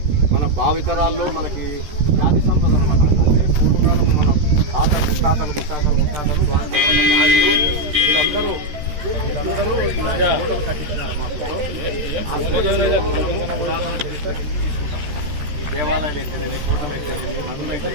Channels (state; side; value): late; left; 13 ms